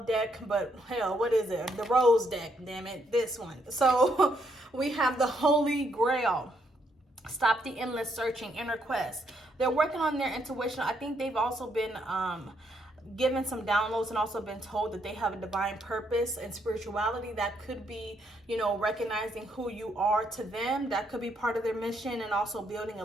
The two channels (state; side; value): normal; both; correlation 0.74